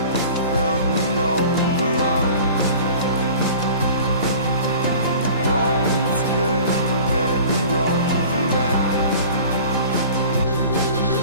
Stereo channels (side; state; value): both; inverted; correlation -0.44